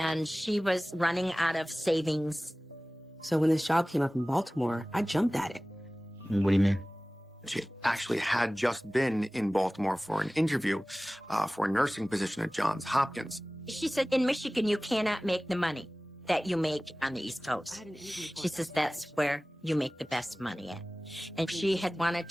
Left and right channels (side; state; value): both; normal; correlation 0.98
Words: she was running out of savings. So when this job came up in Baltimore, I jumped at it. What do you mean? She actually had just been in Baltimore for an interview for a nursing position at Johns Hopkins. She said, in Michigan, you cannot make the money that you make on the East Coast. She says that's where you make the best money at. And she had wanted